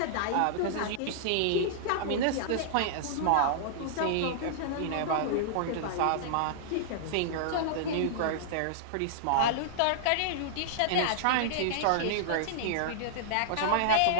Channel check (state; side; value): different; both; correlation -0.01